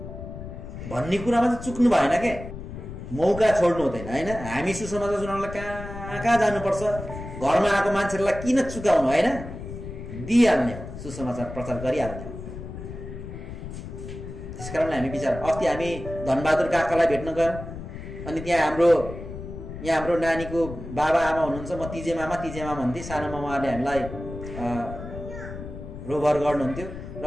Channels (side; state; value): left; noise; rumble, 10 dB below the sound